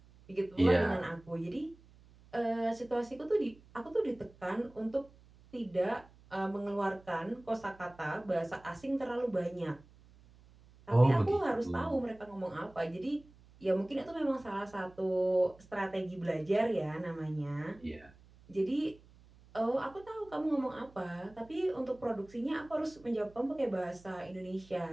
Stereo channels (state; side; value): noise; right; hum, 25 dB below the sound